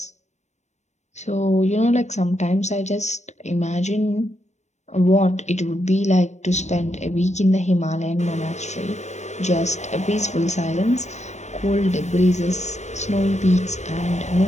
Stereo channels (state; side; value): late; right; 0.34 ms